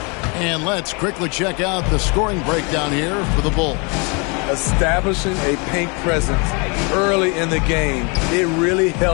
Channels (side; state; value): right; quieter; 32.3 dB